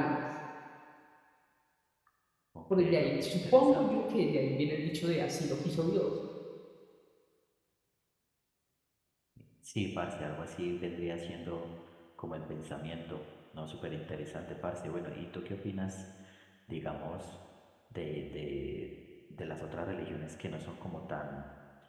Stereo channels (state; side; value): identical; both; correlation 1.00